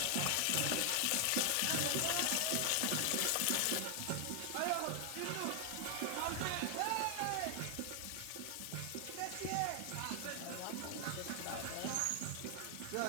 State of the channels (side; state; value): both; different; correlation 0.00